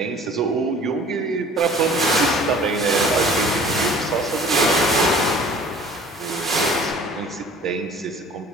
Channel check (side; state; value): both; normal; correlation 0.49